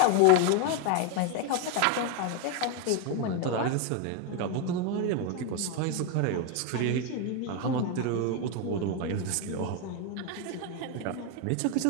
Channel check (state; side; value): different; both; correlation 0.02